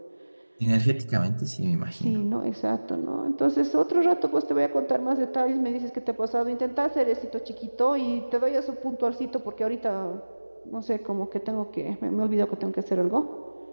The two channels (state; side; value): inverted; both; correlation -1.00